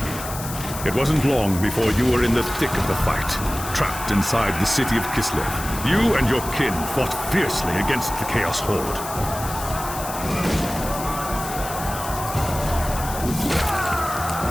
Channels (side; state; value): left; noise; hiss, 10 dB below the sound